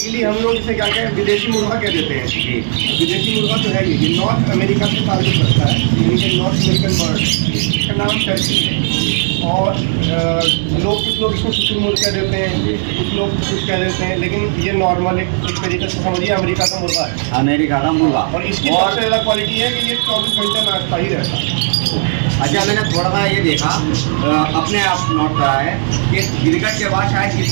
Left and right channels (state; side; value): silent; left; digital silence